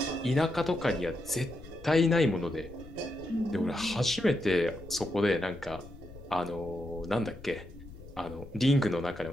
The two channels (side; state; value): left; noise; rumble, 17 dB below the sound